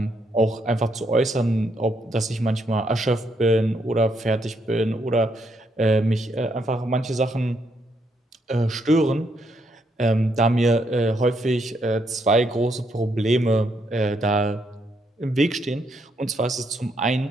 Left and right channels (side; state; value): both; normal; correlation 0.75